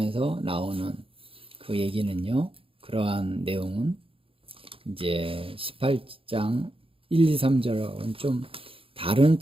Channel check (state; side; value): late; left; 0.27 ms